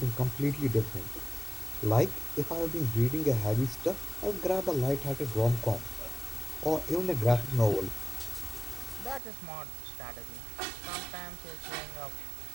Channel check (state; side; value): drops out; left; at 9.2 s